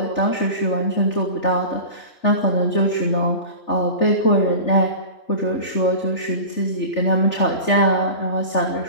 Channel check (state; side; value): late; right; 3.4 ms